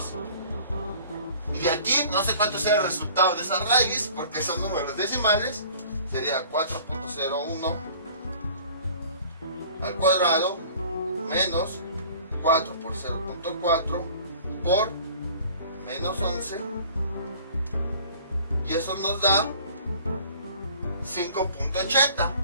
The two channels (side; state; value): both; inverted; correlation -0.49